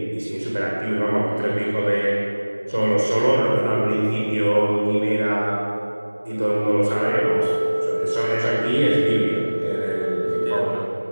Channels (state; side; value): inverted; both; correlation -1.00